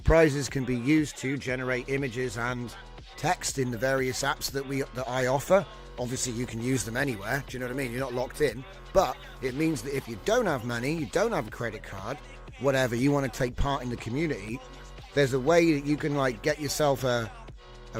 can be used to generate images and text in the various apps that I offer. Obviously, you can use them anywhere. Do you know what I mean? You're not locked in. But it means that if you don't have money, you don't have a credit card, whatever, you want to take part in the community, there's a way that you can like get yourself a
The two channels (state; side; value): identical; both; correlation 1.00